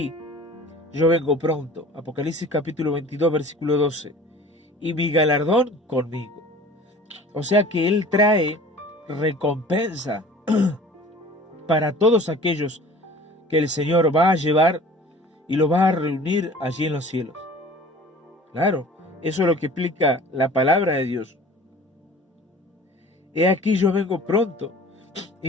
yo vengo pronto. Apocalipsis capítulo 22, versículo 12. Y mi galardón conmigo. O sea que Él trae recompensa para todos aquellos que el Señor va a llevar y lo va a reunir allí en los cielos. Claro, eso es lo que explica la palabra de Dios. He aquí yo vengo pronto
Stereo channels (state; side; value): normal; both; correlation 0.45